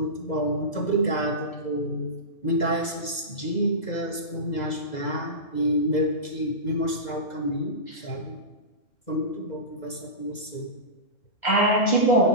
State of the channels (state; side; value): late; right; 2.0 ms